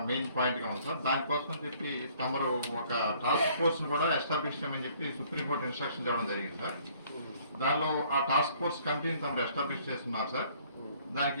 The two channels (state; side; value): inverted; both; correlation -0.60